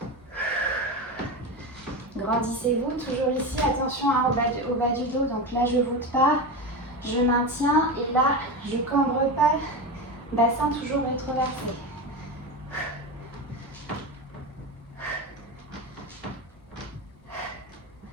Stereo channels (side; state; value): both; normal; correlation 0.20